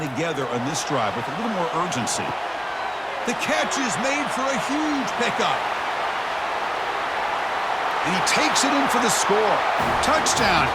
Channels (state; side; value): identical; both; correlation 1.00